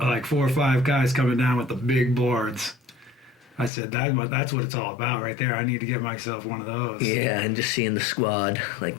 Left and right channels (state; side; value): drops out; right; at 3.7 s